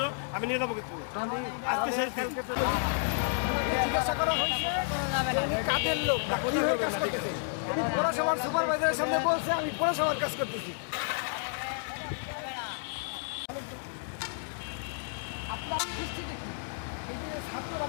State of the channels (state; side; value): silent; right; digital silence